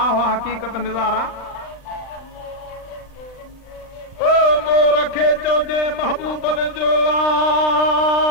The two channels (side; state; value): right; late; 39 ms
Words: हक़ीक़त निज़ारा ओ मोर खे चइजे महबूबन जो